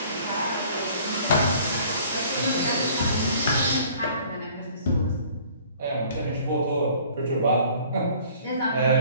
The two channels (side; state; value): both; inverted; correlation -0.53